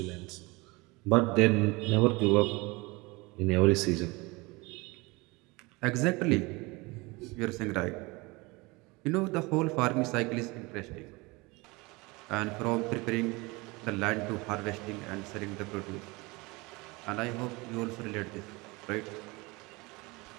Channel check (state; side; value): quieter; left; 24.6 dB